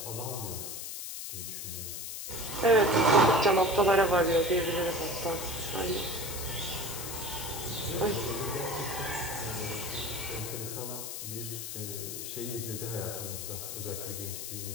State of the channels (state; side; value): noise; left; hiss, 6 dB below the sound